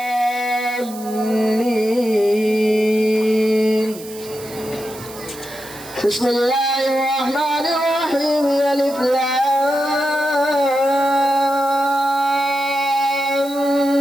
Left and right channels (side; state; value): right; noise; hiss, 16 dB below the sound